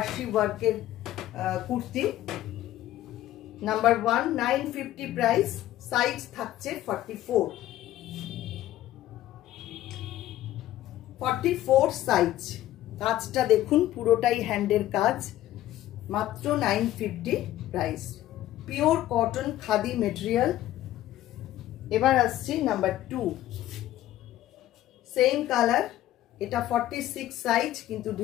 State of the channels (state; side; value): quieter; right; 14.0 dB